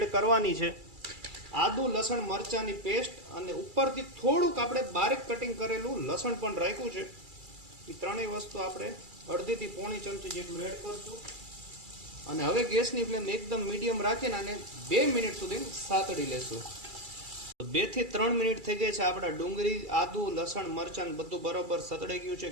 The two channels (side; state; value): left; late; 2.3 ms